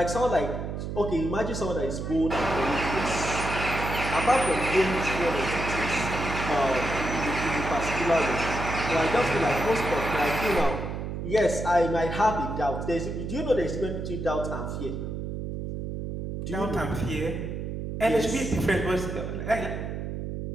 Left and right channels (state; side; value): noise; right; hum, 5 dB below the sound